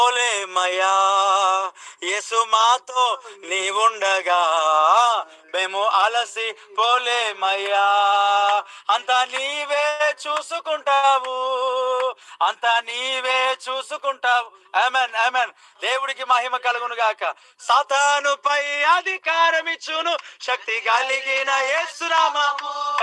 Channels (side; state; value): both; identical; correlation 1.00